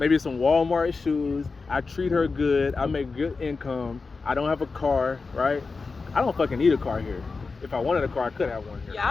some Walmart shoes. I treat her good. I make good income. I don't have a car, right? I don't fucking need a car here. If I wanted a car, I could have one here. Yeah,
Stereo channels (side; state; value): right; quieter; 4.3 dB